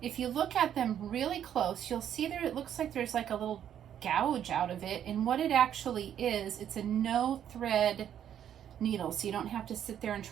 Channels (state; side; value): quieter; left; 9.8 dB